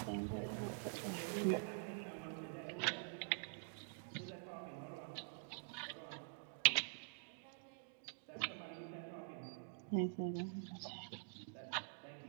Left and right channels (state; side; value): silent; left; digital silence